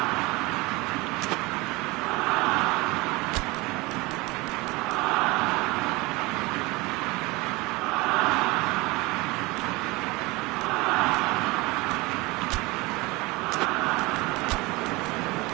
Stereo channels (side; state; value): left; quieter; 23.2 dB